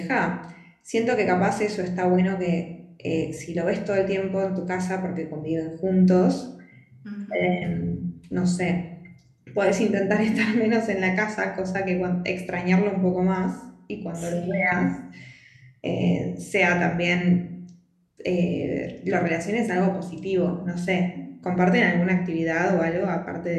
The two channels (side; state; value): both; identical; correlation 1.00